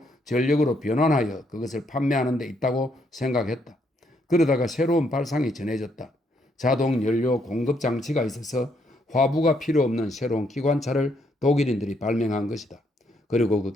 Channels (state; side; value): normal; both; correlation 0.73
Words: 전력으로 변환하여 그것을 판매하는 데 있다고 생각했다. 그러다가 새로운 발상이 전해졌다. 자동 연료 공급 장치가 있어서 화부가 필요 없는 새로운 기관차를 독일인들이 발명한 것이다. 그리고 그